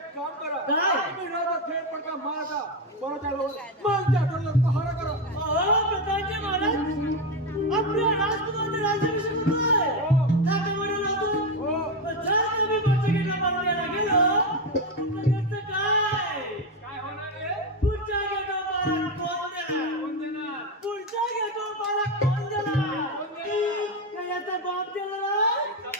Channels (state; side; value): normal; both; correlation 0.12